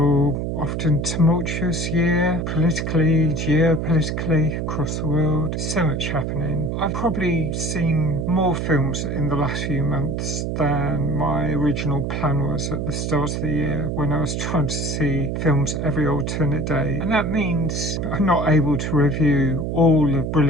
often tumultuous year, politically, geopolitically, across the world. So much happening. I've probably seen more films in the last few months than my original plan was at the start of the year when I was trying to see films every alternate day, and that means I'm not able to review all the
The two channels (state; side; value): noise; right; hum, 2 dB below the sound